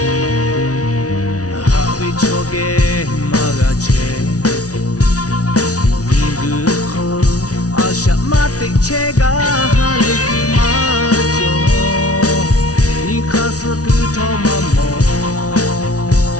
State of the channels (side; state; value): right; late; 0.68 ms